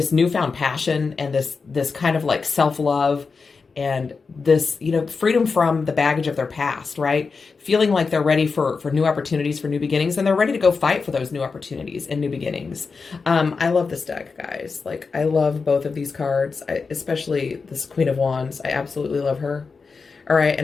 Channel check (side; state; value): right; quieter; 4.8 dB